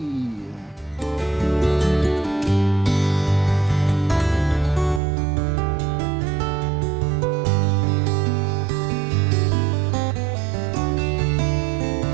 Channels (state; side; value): drops out; left; at 5.0 s